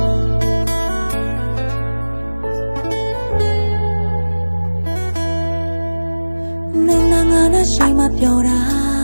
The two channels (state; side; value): inverted; both; correlation -1.00